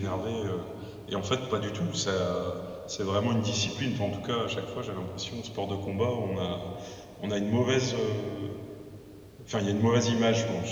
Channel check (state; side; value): identical; both; correlation 1.00